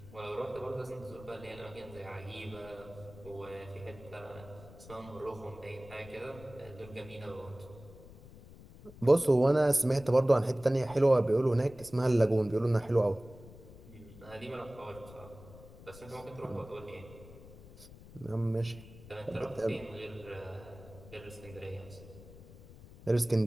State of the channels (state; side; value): noise; left; rumble, 19 dB below the sound